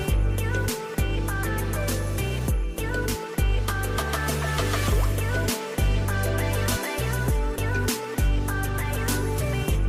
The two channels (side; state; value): both; identical; correlation 1.00